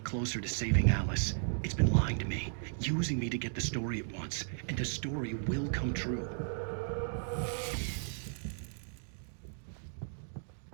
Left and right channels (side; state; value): left; silent; digital silence